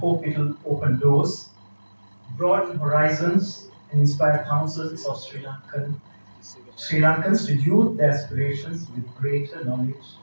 it will open doors, broaden horizons, and inspire thousands of Sri Lankans to youth their aspirations with greater knowledge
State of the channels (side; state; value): both; inverted; correlation -1.00